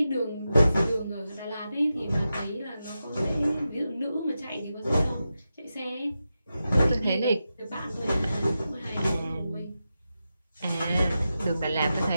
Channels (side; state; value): both; inverted; correlation -0.90